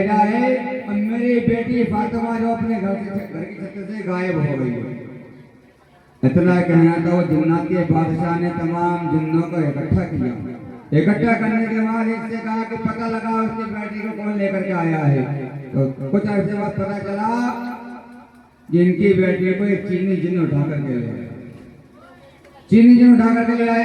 है और मेरी बेटी फातिमा जो अपने घर की छत से गायब हो गई है। इतना कहना था, वो जिन्नात के बादशाह ने तमाम जिन्नों को इकट्ठा किया। इकट्ठा करने के बाद इससे कहा कि पता लगा उसकी बेटी को कौन लेकर के आया है। तो कुछ अर्से बाद पता चला कि इनकी बेटी को एक चीनी जिन्न उठा करके ले आया, चीनी जिन्न उठा करके ले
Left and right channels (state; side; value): identical; both; correlation 1.00